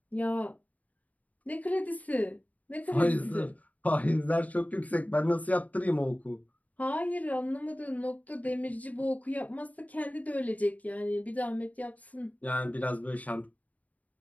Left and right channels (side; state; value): right; late; 0.073 ms